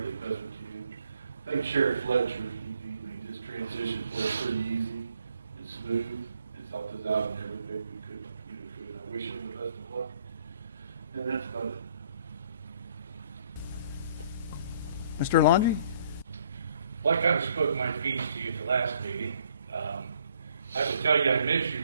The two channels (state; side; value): inverted; both; correlation -0.64